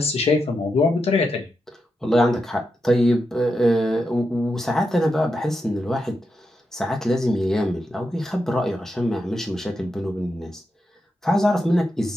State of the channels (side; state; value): both; normal; correlation 0.86